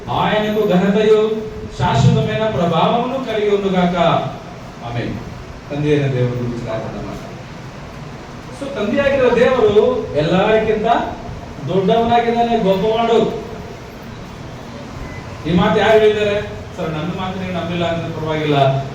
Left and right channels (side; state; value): both; identical; correlation 1.00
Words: ఆయనకు ఘనతయు శాశ్వతమైన ప్రభావమును కలిగి ఉండుగాక. ఆమేన్. ತಂದೆಯ ದೇವರು ಗುరించి ಮಾತಾಡೋಣ. ಸೊ ತಂದೆಯಾಗಿರೋ ದೇವರು ಎಲ್ಲರಿಗಿಂತ ದೊಡ್ಡವನಾಗಿದ್ದಾನೆ, ಗೊಬ್ಬವಾಡು. ಈ ಮಾತು ಯಾರು ಹೇಳಿದ್ದಾರೆ? ಸರ್ ನನ್ನ ಮಾತು ನೀವು ನಂಬಿಲ್ಲ ಅಂದ್ರೆ ಪರವಾಗಿಲ್ಲ,